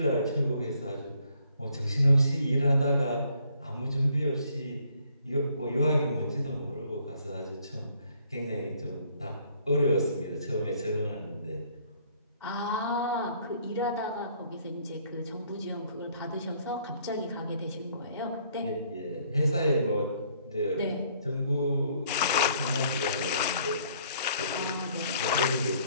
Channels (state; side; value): inverted; both; correlation -0.64